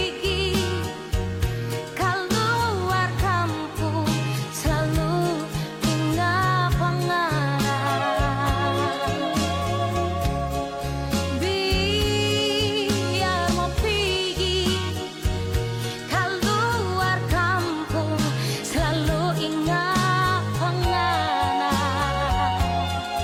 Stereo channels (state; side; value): identical; both; correlation 1.00